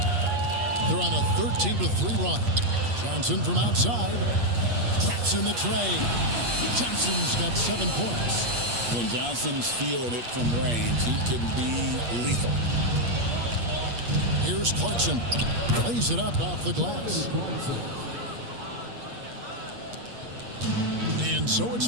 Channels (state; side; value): late; left; 8.5 ms